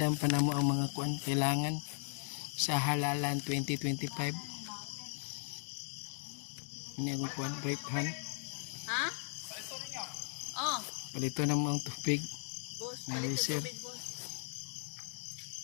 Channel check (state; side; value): silent; right; digital silence